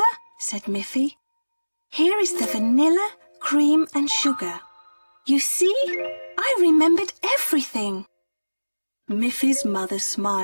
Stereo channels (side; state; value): both; inverted; correlation -1.00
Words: said Miffy. Here is the vanilla, cream and sugar. You see, I remembered everything. Miffy's mother